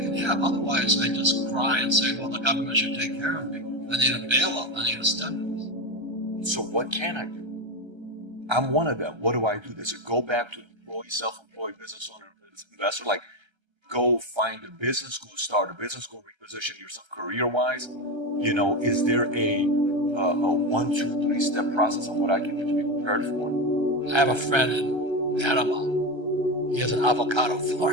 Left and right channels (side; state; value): left; late; 1.3 ms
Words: have. Otherwise, I just cry and say, well, the government should take care of me. I need a bailout. I need a stimulus. So what can I do? I'm one of them. What do I do? Does it go back to employee, self-employed business owner, investor? Like, go find a business, go start a business, go reposition yourself career-wise? Is there a 1, 2, 3 step process on what I can do to be prepared for it? I have a friend in Panama. He has an avocado